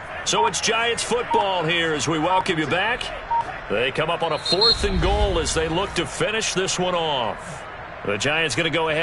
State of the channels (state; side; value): identical; both; correlation 1.00